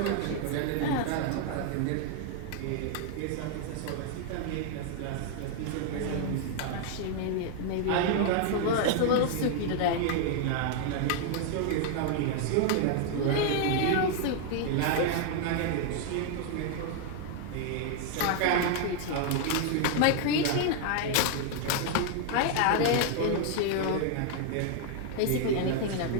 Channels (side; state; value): both; different; correlation 0.00